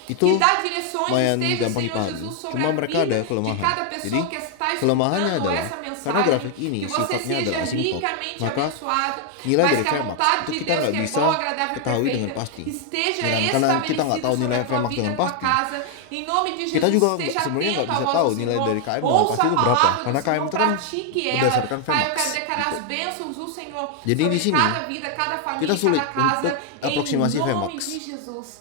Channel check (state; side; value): different; both; correlation 0.00